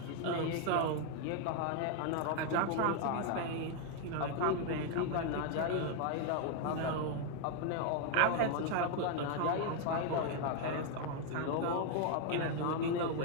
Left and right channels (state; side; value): different; both; correlation 0.00